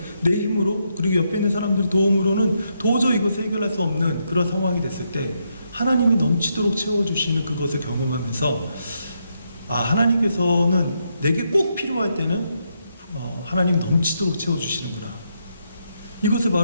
내 힘으로 그리고 옆에 있는 사람들의 도움으로는 도저히 이것을 해결할 수 없는 그런 상황이 됐을 때 하나님이 넘치도록 채워주시는 그것을 경험하면서 하나님께서는 내게 꼭 필요할 때는 하나님 넘치도록 채워주시는구나. 이것을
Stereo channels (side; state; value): both; inverted; correlation -0.80